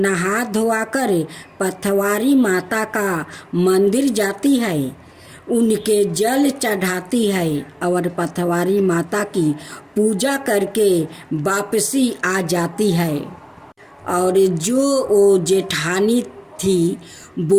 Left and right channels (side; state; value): both; identical; correlation 1.00